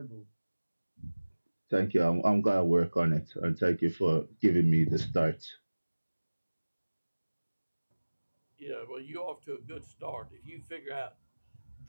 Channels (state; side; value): inverted; both; correlation -1.00